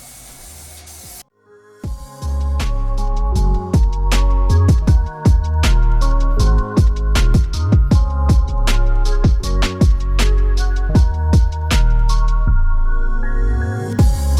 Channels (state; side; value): identical; both; correlation 1.00